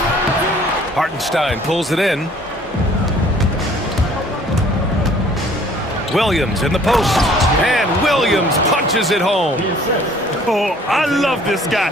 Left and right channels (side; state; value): both; normal; correlation 0.55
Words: Hartenstein pulls it in. Williams in the post. And Williams punches it home. Oh, I love this guy.